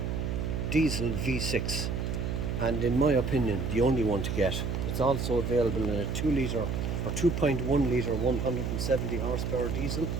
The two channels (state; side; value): noise; right; hum, 1 dB below the sound